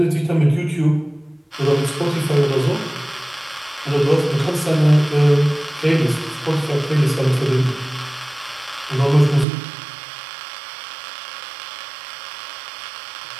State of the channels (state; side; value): drops out; left; at 9.5 s